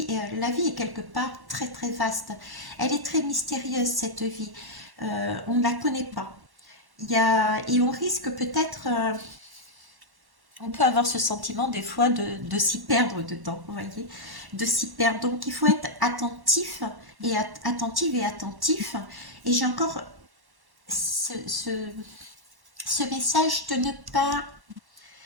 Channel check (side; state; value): left; late; 1.1 ms